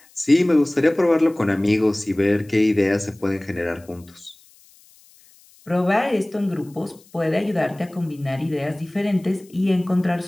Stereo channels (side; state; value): left; noise; hiss, 28 dB below the sound